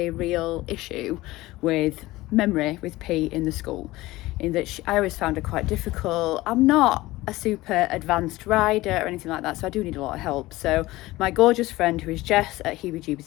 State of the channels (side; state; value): right; quieter; 18.5 dB